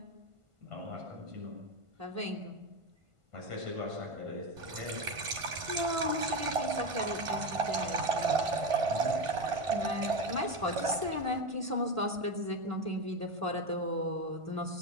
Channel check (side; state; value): left; late; 1.5 ms